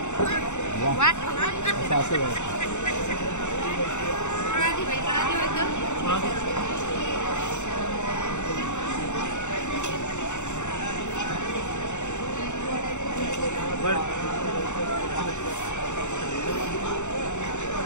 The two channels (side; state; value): right; late; 0.84 ms